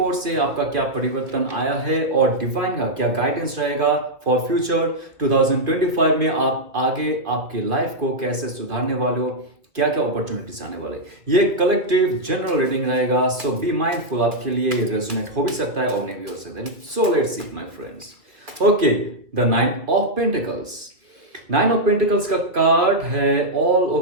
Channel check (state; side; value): late; left; 2.1 ms